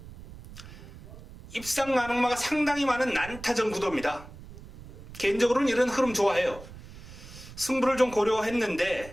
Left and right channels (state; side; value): noise; right; rumble, 16 dB below the sound